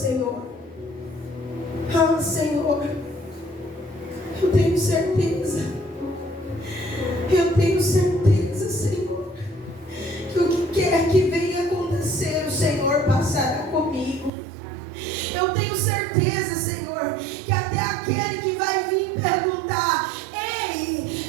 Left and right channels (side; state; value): left; drops out; at 14.3 s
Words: Ah, Senhor, eu tenho certeza. Eu tenho certeza, Senhor, que o que quer que venha acontecer, o Senhor passará comigo. Eu tenho certeza, Senhor, que até aquele que vai vir perguntar: